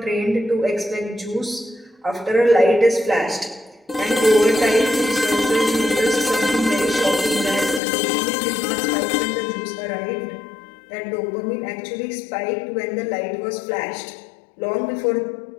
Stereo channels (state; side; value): drops out; right; at 7.8 s